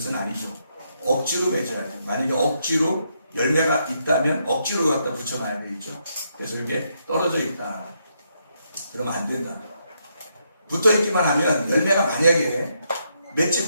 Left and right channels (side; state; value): both; inverted; correlation -0.78